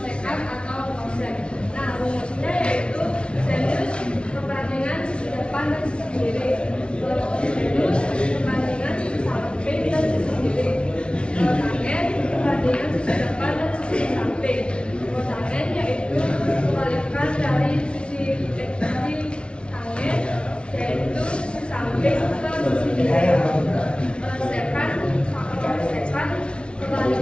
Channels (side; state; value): right; late; 0.058 ms